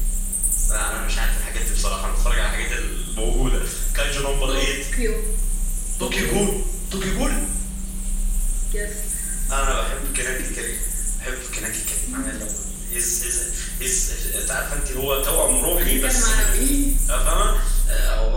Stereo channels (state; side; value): identical; both; correlation 1.00